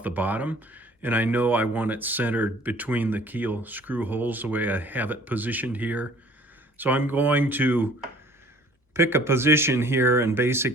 the bottom. And I know I want it centered between the keel screw holes the way I have it positioned here. So I'm going to pick a position here and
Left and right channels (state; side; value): normal; both; correlation 0.53